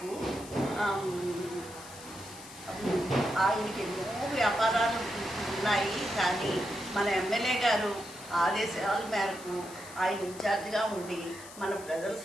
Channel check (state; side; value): noise; left; hiss, 16 dB below the sound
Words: ఆయనకి ఎన్నో వ్యాపారాలు ఉన్నాయి, కానీ మన ఎమ్మెల్యే గారు ఆదేశాల మేరకు ఆయన ఇన్ఛార్జిగా ఉండి మన ప్రజల